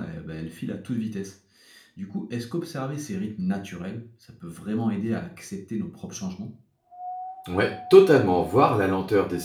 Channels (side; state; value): both; identical; correlation 1.00